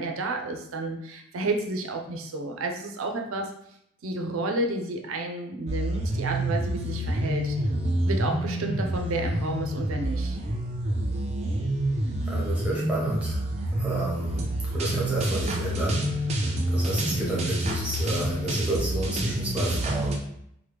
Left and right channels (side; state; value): both; normal; correlation 0.64